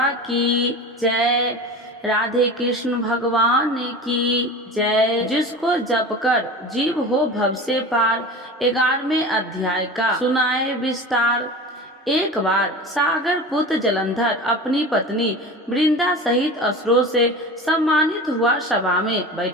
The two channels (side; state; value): both; normal; correlation 0.32